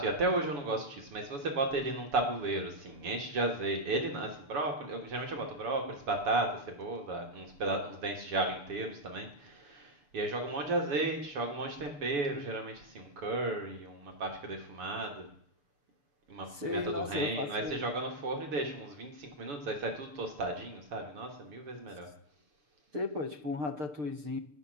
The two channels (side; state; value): left; late; 6.7 ms